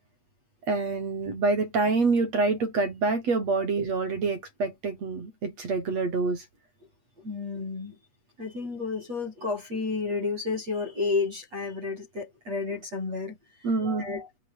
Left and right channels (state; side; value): late; left; 8.3 ms